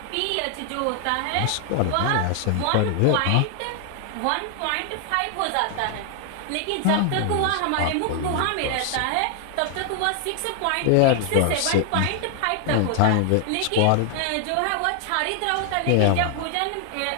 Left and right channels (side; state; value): both; different; correlation 0.00